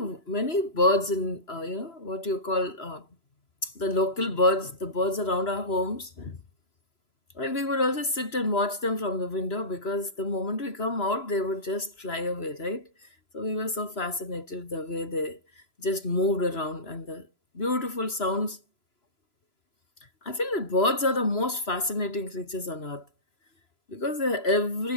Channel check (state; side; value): late; right; 3.0 ms